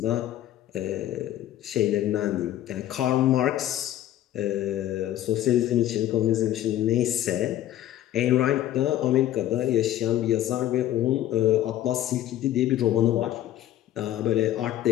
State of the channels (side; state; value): right; quieter; 12.9 dB